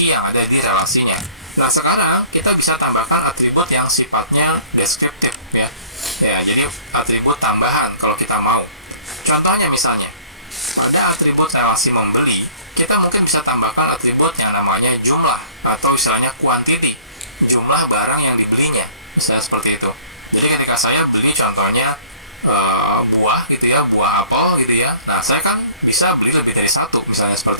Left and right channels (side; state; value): both; inverted; correlation -0.51